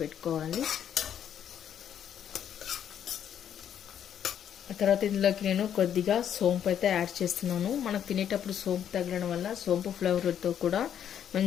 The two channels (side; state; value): right; quieter; 9.4 dB